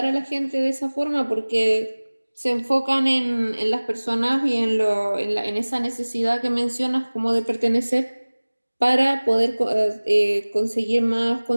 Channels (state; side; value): inverted; both; correlation -1.00